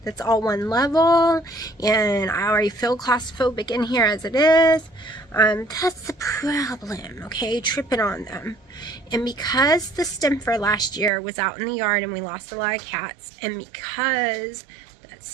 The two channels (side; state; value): left; drops out; at 11.1 s